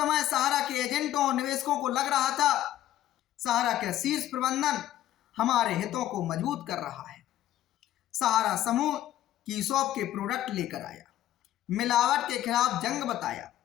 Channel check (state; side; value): quieter; right; 13.1 dB